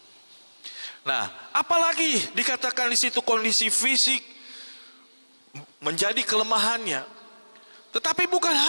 Nah, apalagi dikatakan di situ kondisi fisik menjadi kelemahannya. Tetapi bukan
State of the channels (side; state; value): both; inverted; correlation -1.00